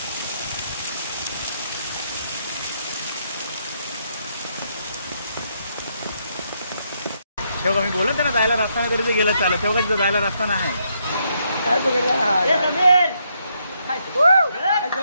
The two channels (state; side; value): inverted; both; correlation -0.76